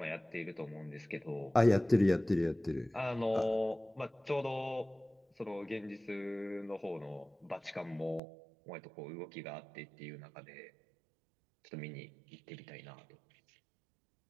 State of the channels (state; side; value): drops out; left; at 8.2 s